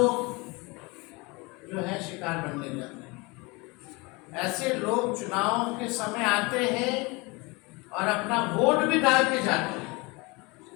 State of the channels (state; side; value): quieter; right; 26.1 dB